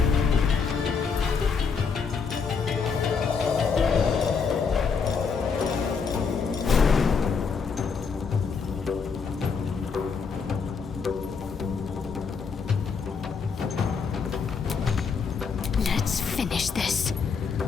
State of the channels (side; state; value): right; quieter; 5.6 dB